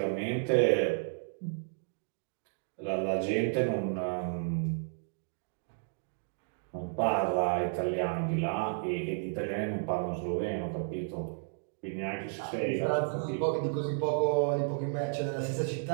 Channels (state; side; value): silent; left; digital silence